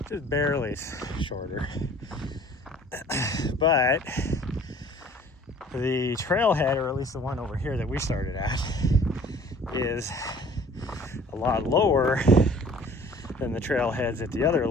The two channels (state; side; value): normal; both; correlation 0.51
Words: just barely shorter. But the trailhead, or at least the one over here that we started at, is a lot lower than the trailheads at the other